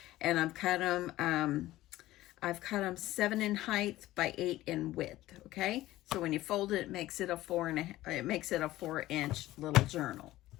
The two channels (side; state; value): right; quieter; 16.1 dB